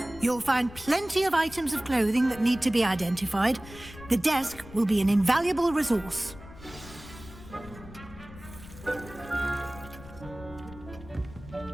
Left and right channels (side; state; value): left; noise; rumble, 17 dB below the sound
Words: You'll find plenty of items of clothing that need to be identified. The desk will be an invaluable resource.